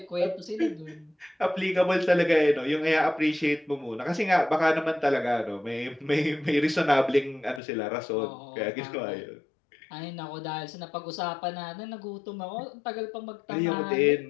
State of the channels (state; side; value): drops out; right; at 7.6 s